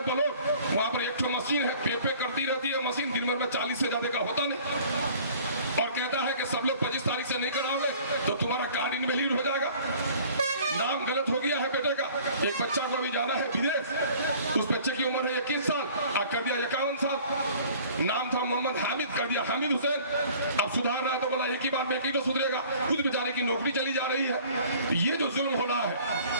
बोलो, वहां पर एक मशीन है, पे करती रहती है मशीन, दिन भर में 40 से ज्यादा का होता नहीं, और कहता है कि सब लोग 25 तारीख से नहीं कराओगे तो तुम्हारा कार्ड इनवैलिड हो जाएगा। नाम गलत हो गया है बेटे का। एक बच्चा को अभी जाना है विदेश, उस बच्चे की उम्र है 21 साल, कर दिया 51 साल। नाम था मोहम्मद हामिद, कर दिया हामिद हुसैन। अब सुधारना है तो बोला एक ही बार में एक ही तो सुधरेगा, खुद बेचारे की नौकरी चली जा रही है। ये जो जुल्म हो रहा है,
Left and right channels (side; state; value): both; inverted; correlation -0.50